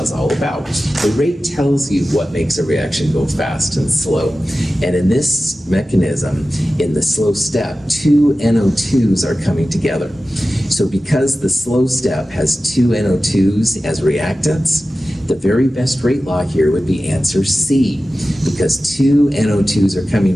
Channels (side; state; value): both; normal; correlation 0.95